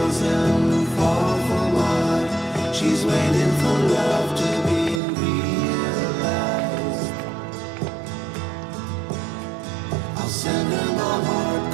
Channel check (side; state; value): left; drops out; at 5.0 s